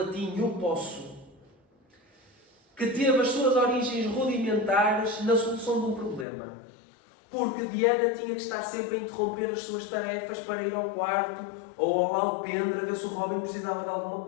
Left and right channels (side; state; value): right; drops out; at 6.2 s